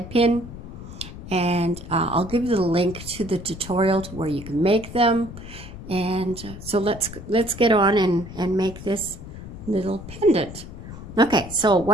pin, and I'll give you the link to the tutorial to where you can make them. And so let's get on and make this little pendant. Okay, so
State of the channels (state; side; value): noise; left; rumble, 13 dB below the sound